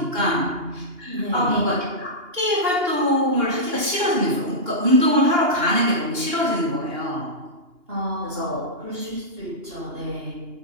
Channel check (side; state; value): left; late; 2.8 ms